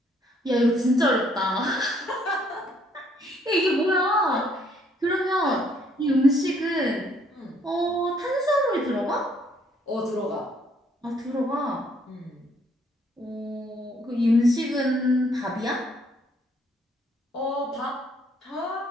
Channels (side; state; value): both; normal; correlation 0.66